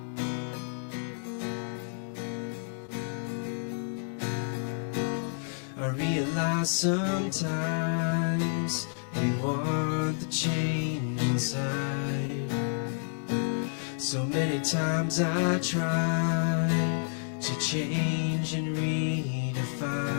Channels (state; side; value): silent; right; digital silence